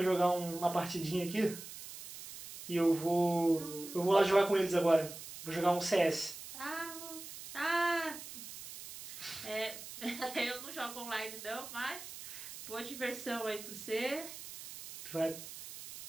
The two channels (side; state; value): right; noise; hiss, 12 dB below the sound